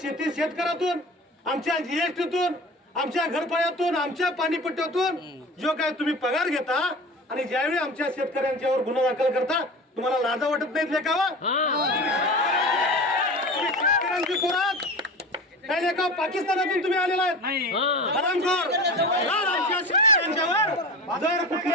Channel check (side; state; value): both; normal; correlation 0.33